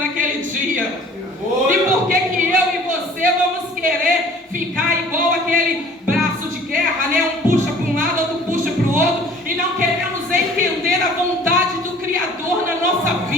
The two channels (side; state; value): both; normal; correlation 0.50